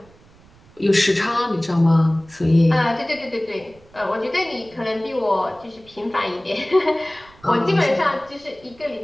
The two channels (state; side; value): noise; right; rumble, 27 dB below the sound